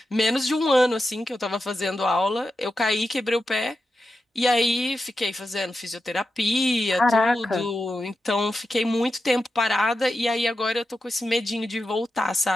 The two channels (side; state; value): both; normal; correlation 0.89